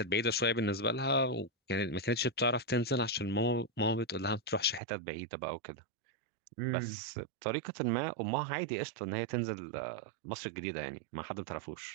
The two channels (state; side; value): drops out; left; at 4.8 s